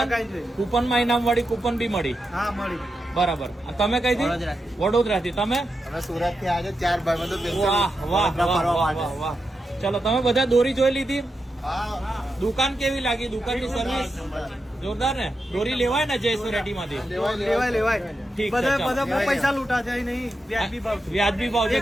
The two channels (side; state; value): both; normal; correlation 0.88